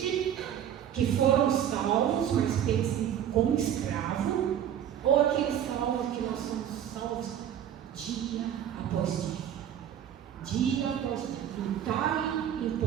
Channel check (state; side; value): quieter; left; 10.0 dB